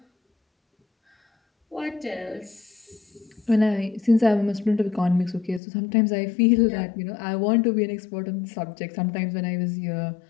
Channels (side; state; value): right; drops out; at 5.6 s